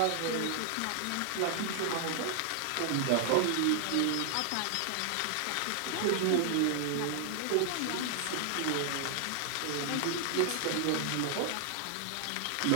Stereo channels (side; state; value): both; different; correlation 0.00